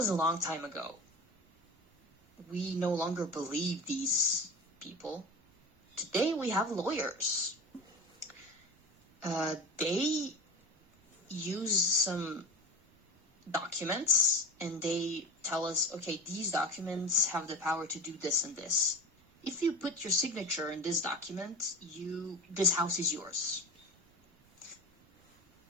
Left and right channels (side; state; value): both; normal; correlation 0.30